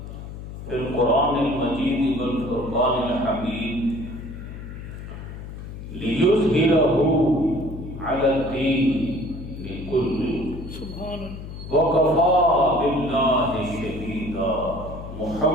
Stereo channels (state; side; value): noise; left; hum, 11 dB below the sound